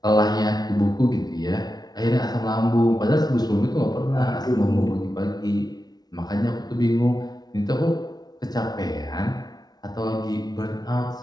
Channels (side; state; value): right; late; 0.19 ms